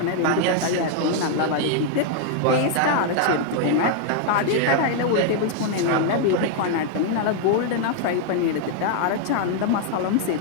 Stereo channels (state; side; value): different; both; correlation 0.00